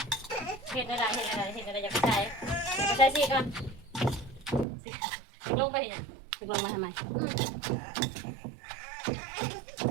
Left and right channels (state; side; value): drops out; left; at 4.7 s